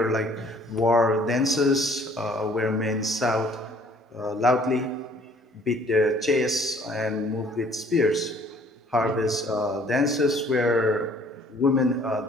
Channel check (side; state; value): both; normal; correlation 0.58